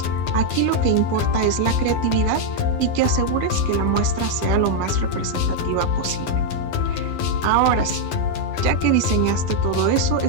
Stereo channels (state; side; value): late; right; 12 ms